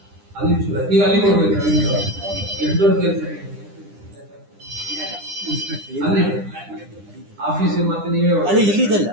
ಅಲ್ಲಿ ಈಗ ಅಲ್ಲಿ ಕೊಡ್ಬೇಕು. ಎಷ್ಟು ದೊಡ್ಡ ಕೆಲಸ ಅಲ್ಲಿ ಆಫೀಸ್ ಮತ್ತೆ ನೀವೇ ಇಲ್ಲಿದಲ್ಲ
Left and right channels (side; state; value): left; late; 10 ms